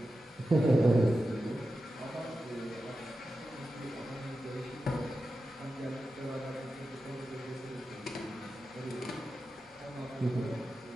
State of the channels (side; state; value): both; normal; correlation 0.91